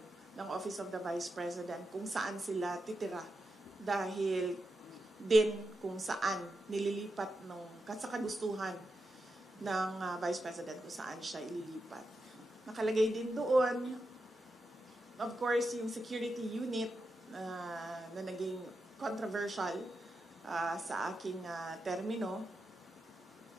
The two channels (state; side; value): normal; both; correlation 0.88